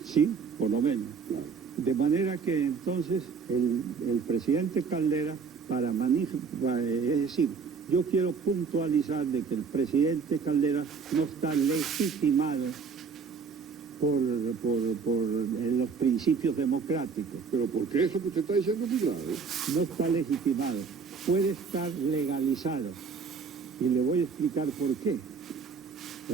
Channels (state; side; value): quieter; left; 5.4 dB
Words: Sí, por lo menos. Claro. De manera que entonces el presidente Caldera, es decir, yo quiero puntualizar de que el presidente Caldera no está legitimado por los principios democráticos. Pero ¿por qué eso que usted está diciendo es muy grave? No está legitimado, puede estar legalizado. Y le voy a explicar por qué.